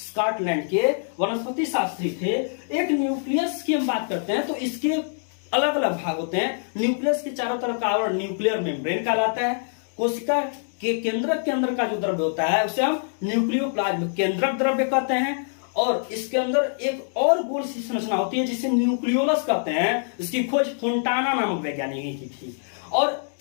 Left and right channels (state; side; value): silent; right; digital silence